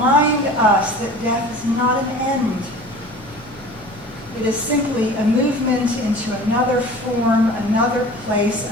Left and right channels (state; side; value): normal; both; correlation 0.41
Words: us that death is not an end. It is simply a movement into another form, another place,